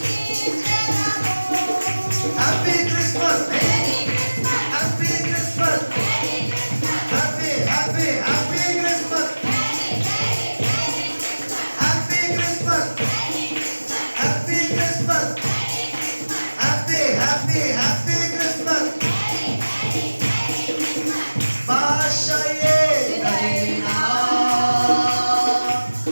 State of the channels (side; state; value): both; inverted; correlation -1.00